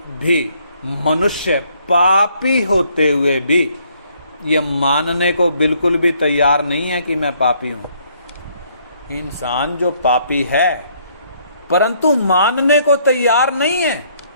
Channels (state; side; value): inverted; both; correlation -0.67